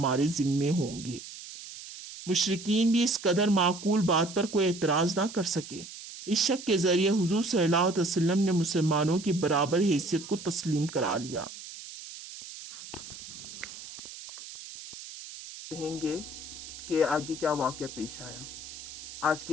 ذمے ہوں گے۔ مشرکین بھی اس قدر معقول بات پر کوئی اعتراض نہ کر سکے۔ اس شک کے ذریعے حضور صلی اللہ علیہ وسلم نے مسلمانوں کی برابر حیثیت کو تسلیم کرا لیا۔ کہیں گے کہ آگے کیا واقعہ پیش آیا۔ آج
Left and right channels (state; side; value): noise; right; hiss, 13 dB below the sound